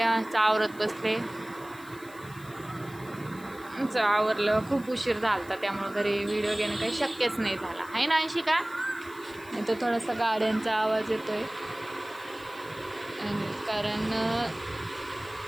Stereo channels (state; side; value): noise; left; hiss, 22 dB below the sound